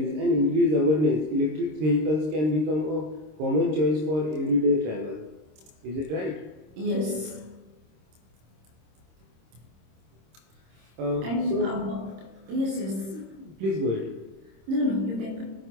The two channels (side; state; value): left; late; 26 ms